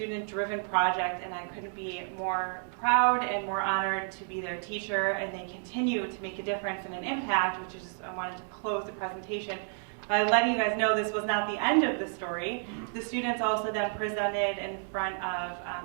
project, and I couldn't be more proud and more honored to be their teacher, and they continue to make a difference and an impact, which is I wanted to close the presentation by letting you guys know this was not the end of the story. The students also then presented in front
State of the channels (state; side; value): silent; left; 57 dB below the other